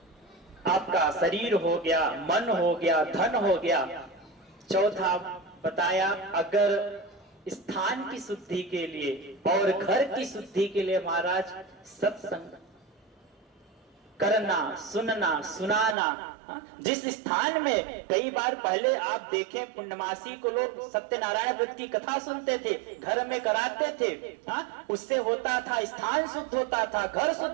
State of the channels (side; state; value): left; drops out; at 16.0 s